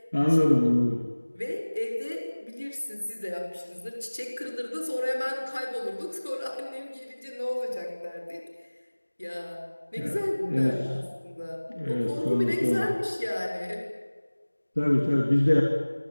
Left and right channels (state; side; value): inverted; both; correlation -1.00